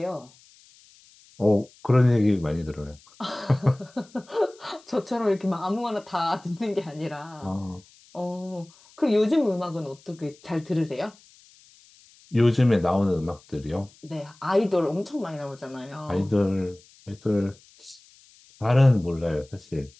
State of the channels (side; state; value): left; noise; hiss, 27 dB below the sound